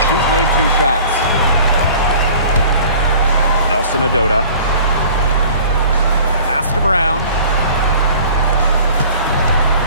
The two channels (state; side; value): inverted; both; correlation -0.47